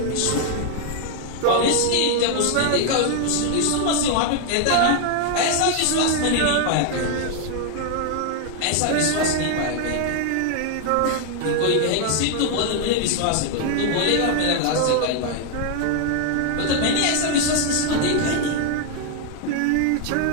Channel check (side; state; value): both; different; correlation 0.00